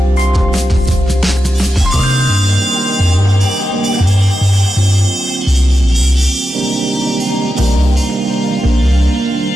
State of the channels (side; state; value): both; normal; correlation 0.89